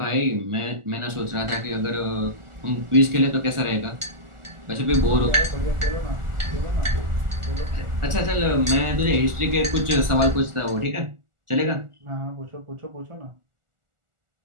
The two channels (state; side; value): late; left; 1.4 ms